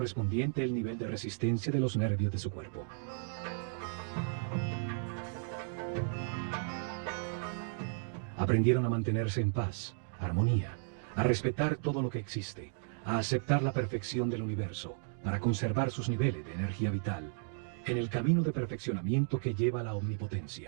el nivel de resistencia de los nervios de su cuerpo. Aprendieron a mantenerse en paz, armonía, a respetar todo lo que existe, a aceptar la perfección del universo para conservar sus niveles de energía vital en el camino de perfeccionamiento que lleva a la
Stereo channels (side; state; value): left; silent; digital silence